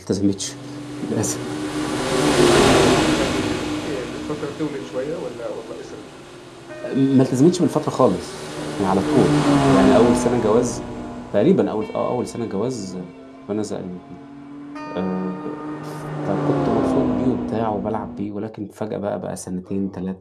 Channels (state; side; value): identical; both; correlation 1.00